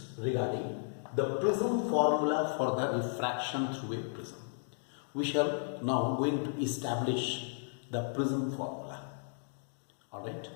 regarding the prism formula for the refraction through a prism. We shall now going to establish the prism formula. Alright,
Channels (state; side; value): silent; right; digital silence